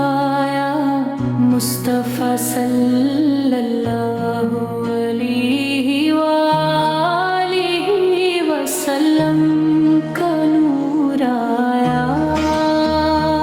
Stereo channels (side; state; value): both; identical; correlation 1.00